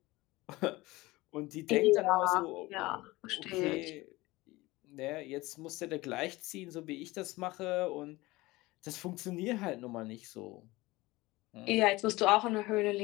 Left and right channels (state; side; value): quieter; right; 20.4 dB